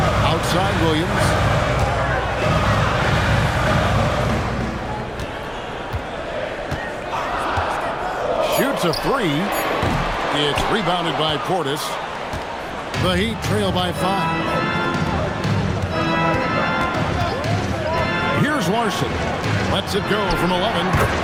Outside Williams. Shoots a 3. It's rebounded by Portis. The Heat trail by 5. Here's Larson. Lets it go from 11.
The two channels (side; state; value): both; identical; correlation 1.00